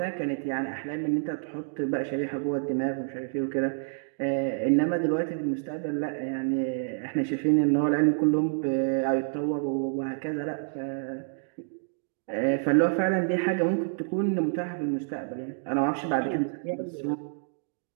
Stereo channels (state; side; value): silent; left; digital silence